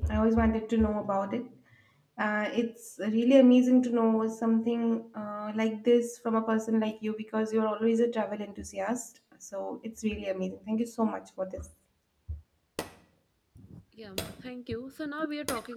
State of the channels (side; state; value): both; identical; correlation 1.00